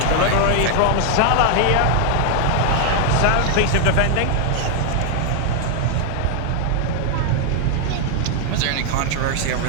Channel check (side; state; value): both; different; correlation 0.00